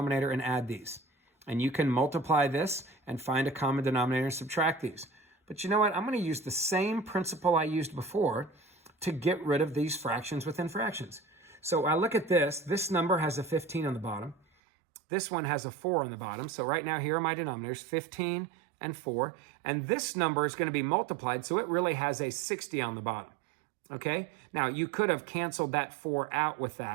and add these. And you can multiply this and find a common denominator and subtract these. But you know what? I'm going to use the same principle I used before to get rid of these fractions within fractions. So I look at this. This number has a 15 on the bottom. This one has a 4 on the bottom. So right now, here are my denominators, 15 and 4. And this number is going to be multiplied, so it really has a 60 on the bottom. Okay, now you could have canceled that 4 out with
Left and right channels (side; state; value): left; drops out; at 14.4 s